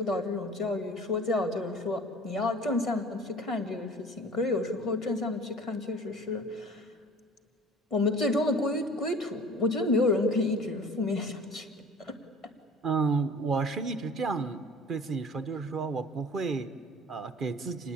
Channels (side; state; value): both; normal; correlation 0.44